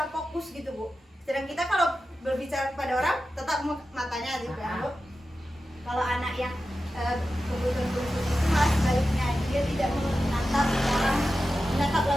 fokus gitu Bu. Sedang kita kalau berbicara kepada orang tetap matanya gitu ya Bu. Kalau anak yang kebutuhan khusus itu malah sebaliknya, dia tidak menatap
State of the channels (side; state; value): both; normal; correlation 0.92